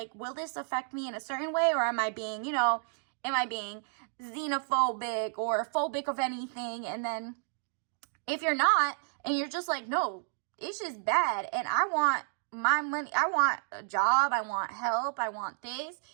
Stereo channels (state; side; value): silent; left; digital silence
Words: will this affect me in a certain way? Or am I being, you know, xenophobic or phobic of anything? And then if you're not, and you're just like, no, it's just bad, and I want my money, I want a job, I want help, I want this,